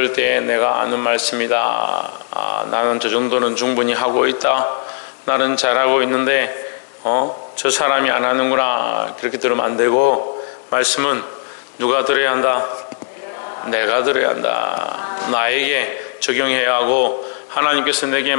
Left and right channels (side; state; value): right; silent; digital silence